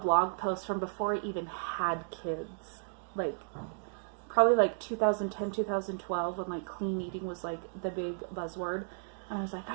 post from before I even had kids. Like, probably like 2010, 2012, when like clean eating was like the big buzzword. And I was like,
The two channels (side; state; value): left; silent; digital silence